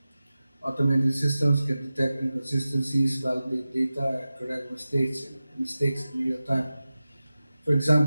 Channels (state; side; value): inverted; both; correlation -0.95